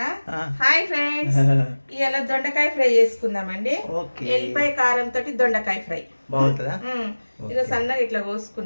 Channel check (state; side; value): inverted; both; correlation -1.00